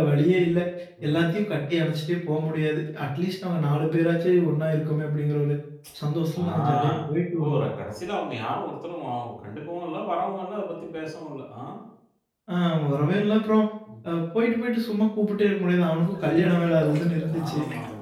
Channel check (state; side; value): identical; both; correlation 1.00